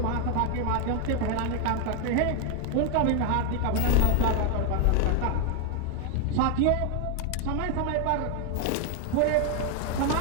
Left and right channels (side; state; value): both; different; correlation 0.00